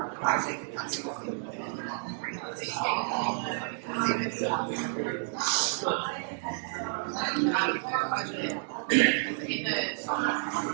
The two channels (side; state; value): left; silent; digital silence